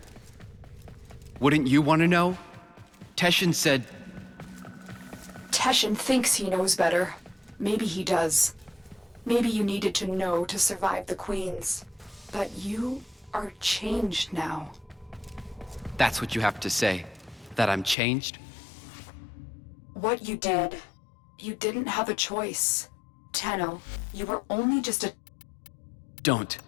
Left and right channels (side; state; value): right; drops out; at 17.9 s